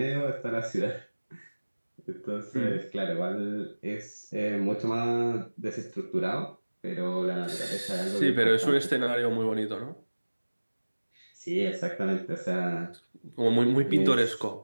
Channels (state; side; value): inverted; both; correlation -1.00